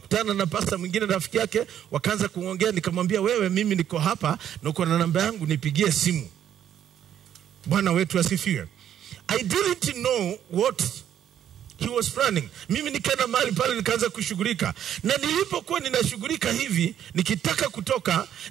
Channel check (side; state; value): left; quieter; 10.1 dB